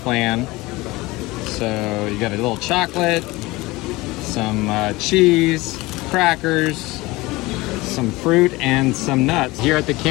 So you got a little chocolate, some cheese, crackers, some fruit, and some nuts. Here at the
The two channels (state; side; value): quieter; right; 21.2 dB